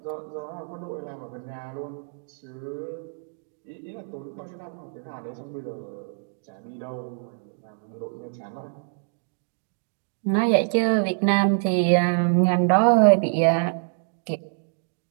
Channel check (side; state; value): left; silent; digital silence